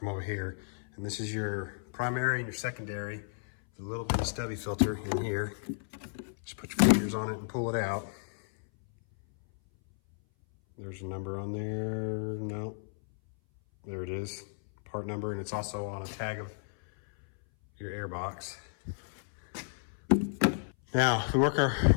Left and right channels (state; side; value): silent; right; 56 dB below the other